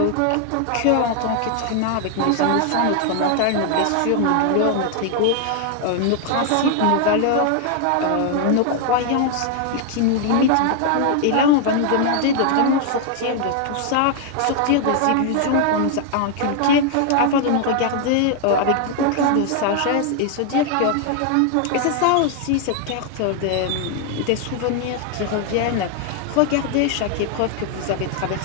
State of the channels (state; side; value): different; both; correlation 0.00